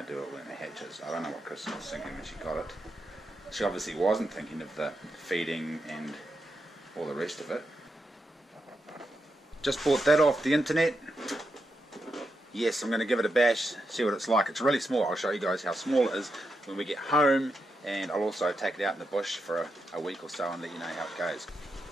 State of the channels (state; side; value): normal; both; correlation 0.85